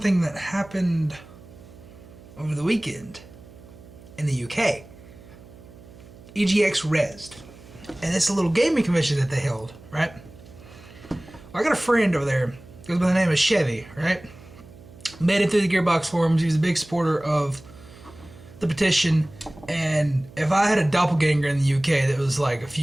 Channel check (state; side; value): noise; right; hum, 20 dB below the sound